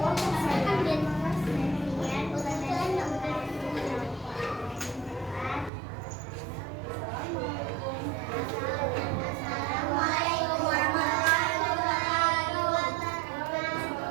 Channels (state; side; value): drops out; left; at 5.7 s